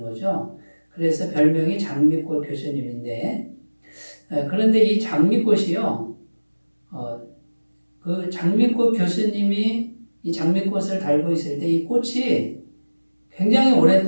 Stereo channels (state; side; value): inverted; both; correlation -1.00